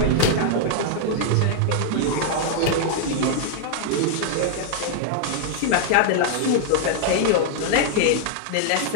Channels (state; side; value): different; both; correlation -0.01